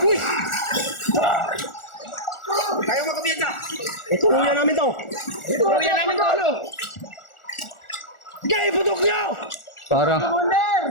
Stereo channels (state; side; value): late; right; 1.4 ms